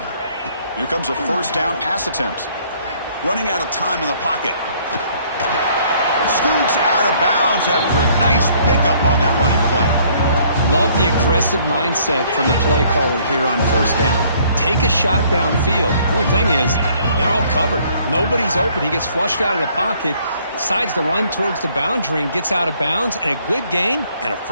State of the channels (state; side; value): inverted; both; correlation -0.62